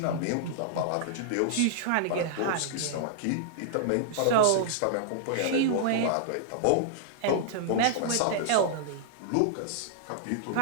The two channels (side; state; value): both; different; correlation -0.01